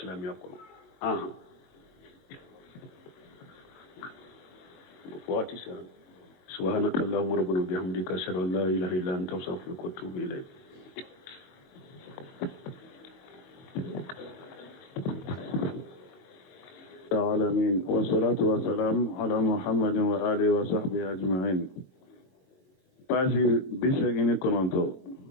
kono wati sa subhanakallahumma rabbana bihamdika ashhadu an la ilaha illa anta astaghfiruka wa atubu ilayk العالمين والصلاة والسلام على محمد وآله وصحبه أجمعين. باشي بشكل كنتو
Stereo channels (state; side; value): late; right; 22 ms